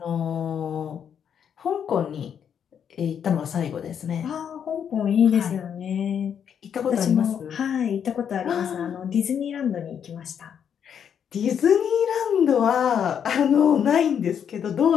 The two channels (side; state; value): right; quieter; 8.1 dB